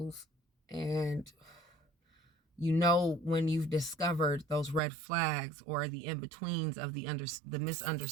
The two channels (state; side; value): drops out; left; at 4.8 s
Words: And you know when you've discovered those red flags or the in-betweens of the